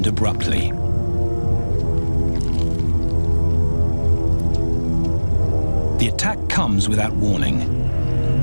abruptly. The attack comes without warning.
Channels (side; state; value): both; inverted; correlation -1.00